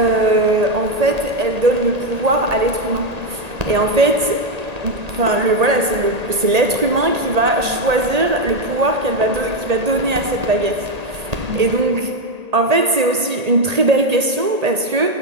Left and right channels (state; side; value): late; left; 1.8 ms